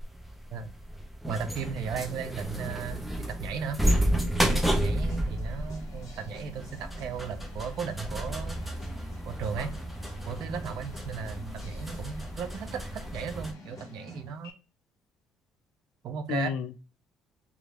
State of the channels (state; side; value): normal; both; correlation 0.80